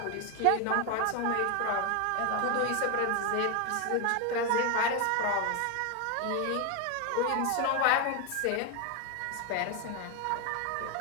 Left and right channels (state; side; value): different; both; correlation 0.01